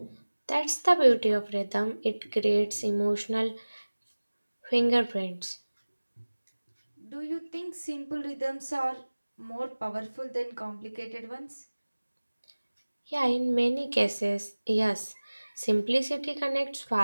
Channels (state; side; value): inverted; both; correlation -1.00